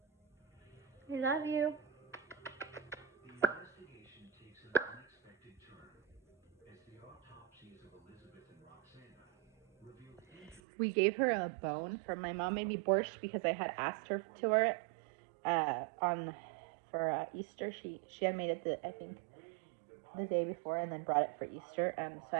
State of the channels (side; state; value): left; drops out; at 10.6 s